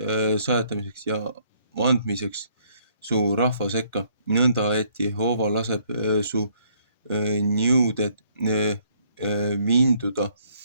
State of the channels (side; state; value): both; inverted; correlation -0.66